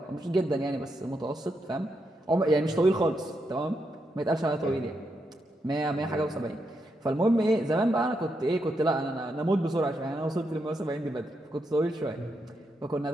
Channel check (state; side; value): normal; both; correlation 0.82